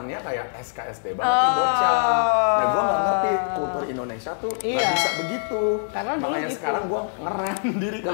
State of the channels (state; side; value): silent; right; digital silence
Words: kayak SKSD banget nih bocah. Nah gue nggak ngerti kultur Indonesia tuh nggak Iya. bisa begitu. Karena dulu Makanya gitu. sekarang gue ngerem diri